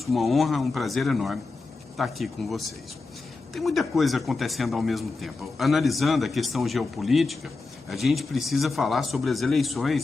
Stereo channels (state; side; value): quieter; right; 3.8 dB